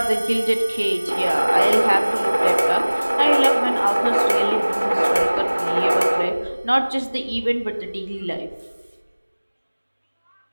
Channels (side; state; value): both; inverted; correlation -1.00